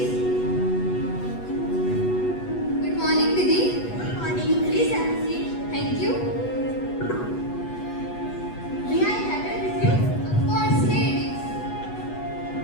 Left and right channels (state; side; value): late; right; 8.2 ms